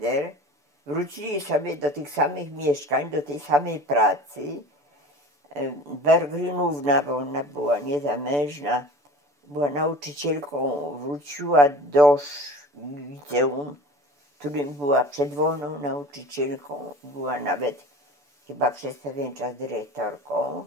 wrócili sobie do tych samych mieszkań, do tej samej pracy. Berggrenówna, bo ona była niezamężna, była nauczycielką, wróciła do liceum, w którym była przedwolną nauczycielką, była nawet chyba przez pewien czas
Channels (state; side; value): late; left; 6.9 ms